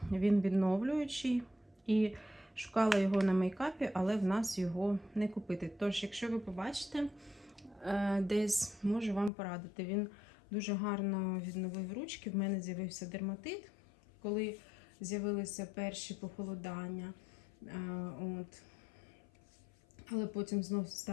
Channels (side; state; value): right; drops out; at 9.3 s